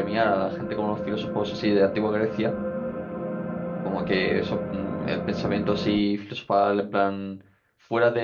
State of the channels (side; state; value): both; identical; correlation 1.00